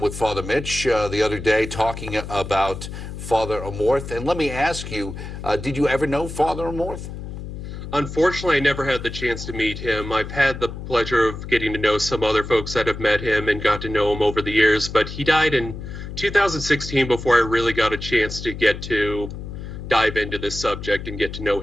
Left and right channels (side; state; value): left; noise; hum, 9 dB below the sound